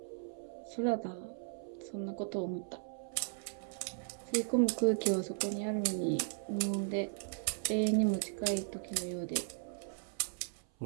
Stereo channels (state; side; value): silent; left; 53 dB below the other